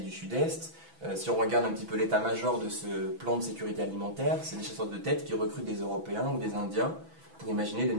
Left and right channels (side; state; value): left; late; 6.1 ms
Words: du Sud-Est. Si on regarde un petit peu l'état-major de ce plan de sécurité alimentaire, c'est des chasseurs de tête qui recrutent des Européens ou des Indiens pour imaginer des